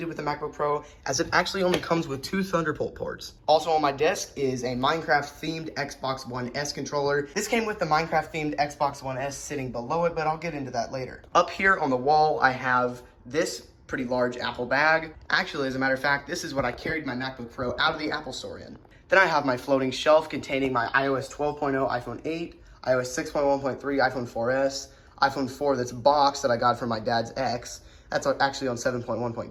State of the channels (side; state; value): both; identical; correlation 1.00